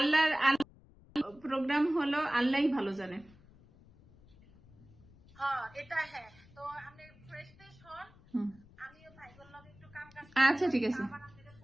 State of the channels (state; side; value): noise; left; rumble, 25 dB below the sound